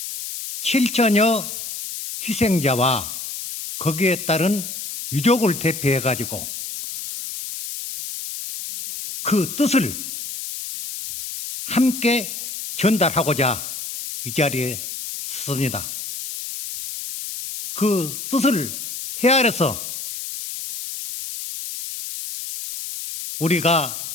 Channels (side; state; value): left; noise; hiss, 8 dB below the sound